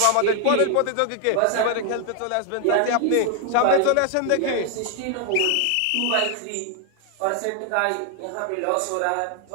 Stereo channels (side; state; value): both; different; correlation 0.01